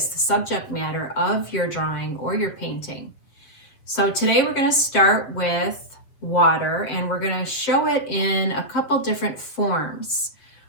the subject matter of your drawing or your painting. So today we're going to start with water, and we're going to show it in a couple different forms.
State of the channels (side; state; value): right; late; 7.4 ms